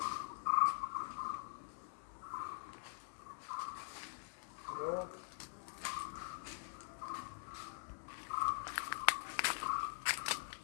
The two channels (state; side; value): silent; right; digital silence